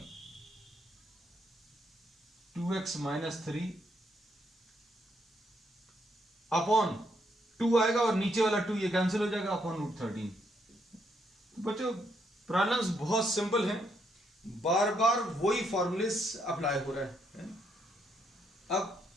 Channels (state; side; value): normal; both; correlation 0.75